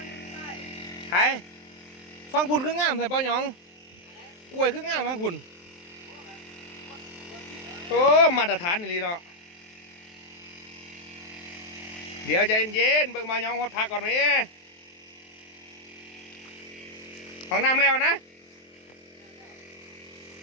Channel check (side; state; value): right; late; 23 ms